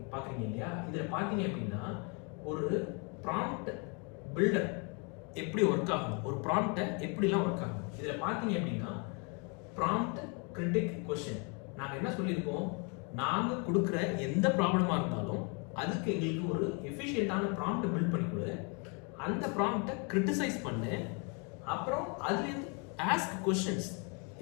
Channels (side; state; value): right; quieter; 34.7 dB